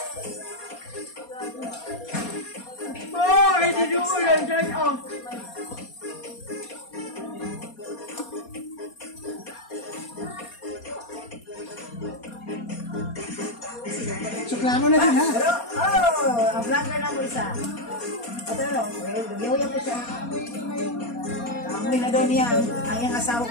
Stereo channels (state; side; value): late; right; 4.2 ms